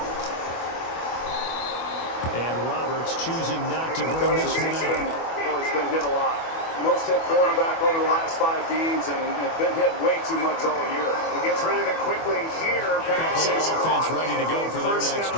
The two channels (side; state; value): right; late; 24 ms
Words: And Roberts choosing not to bring Cousins this one out. has been hit a lot. Most hit quarterback over the last 5 games and been hit way too much all year. He gets rid of it quickly here. Pass is Offense caught. ready to go for their First next down.